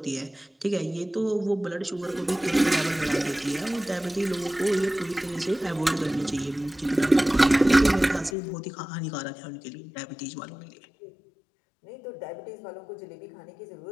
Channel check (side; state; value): right; drops out; at 8.3 s